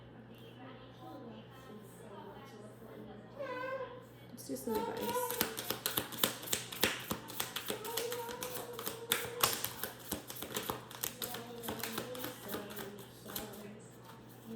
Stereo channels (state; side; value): identical; both; correlation 1.00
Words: Let's do some advice.